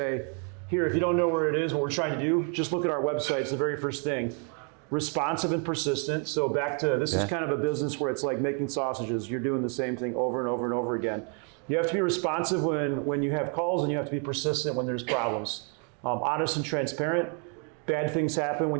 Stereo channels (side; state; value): left; quieter; 39.2 dB